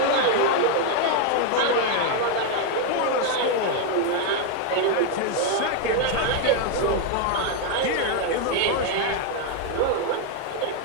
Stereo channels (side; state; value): both; different; correlation 0.01